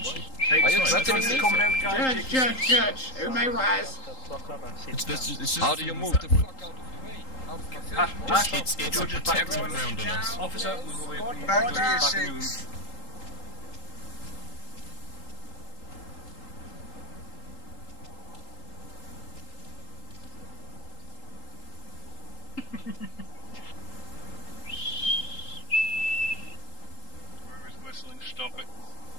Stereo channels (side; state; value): right; late; 3.8 ms